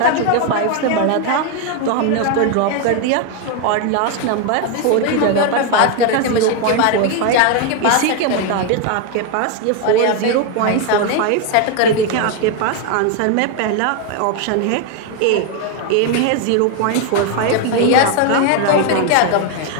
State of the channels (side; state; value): both; different; correlation 0.01